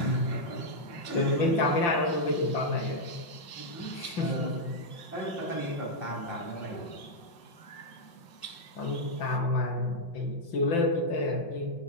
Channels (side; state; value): right; late; 5.3 ms